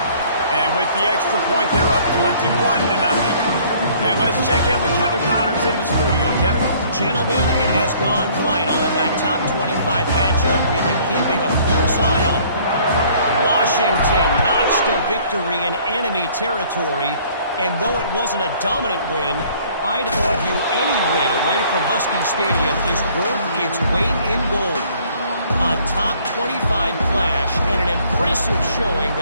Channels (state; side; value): inverted; both; correlation -0.58